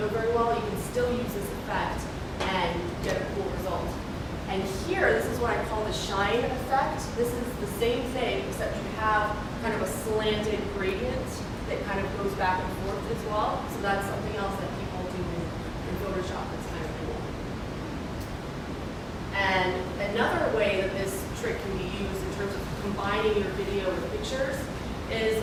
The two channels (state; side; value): identical; both; correlation 1.00